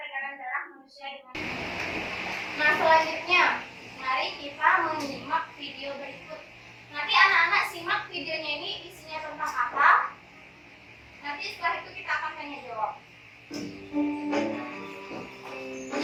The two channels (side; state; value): both; identical; correlation 1.00